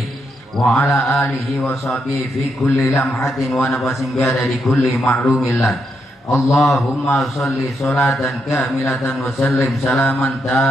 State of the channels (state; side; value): normal; both; correlation 0.80